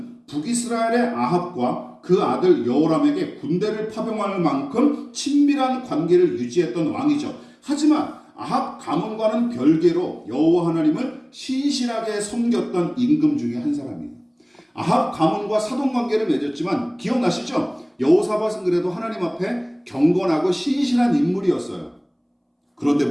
북이스라엘의 아합과 그 아들 여호람에게 군대를 파병할 만큼 친밀한 관계를 유지했던 왕이죠. 하지만 아합 가문과는 별개로 여호와 하나님을 신실하게 섬겼던 임금 중에 한 사람이에요. 아합 가문과 사돈 관계를 맺었지만 기억나시죠? 여호사밧은 그래도 하나님 앞에 경건하고 신실한 인물이었어요. 그런데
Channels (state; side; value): identical; both; correlation 1.00